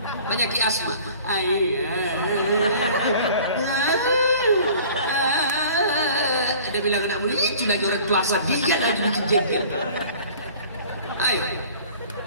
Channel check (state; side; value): inverted; both; correlation -0.47